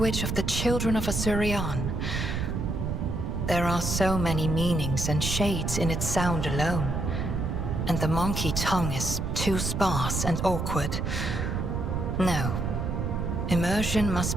of the children of Asurian. There are so many meanings and shades in its sound alone, and the monkey tongue is too sparse and awkward. No. Immersion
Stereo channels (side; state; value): right; noise; rumble, 1 dB below the sound